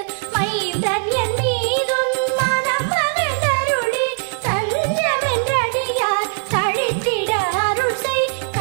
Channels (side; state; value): left; silent; 61 dB below the other